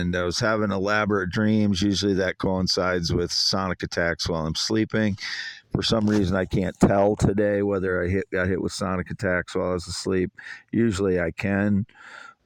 I was having elaborate dreams. Usually that coincides with sonic attacks while I'm sleeping. For some reason, I can't tell today whether got hit with sonic attacks while I was asleep. Usually I can.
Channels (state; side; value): identical; both; correlation 1.00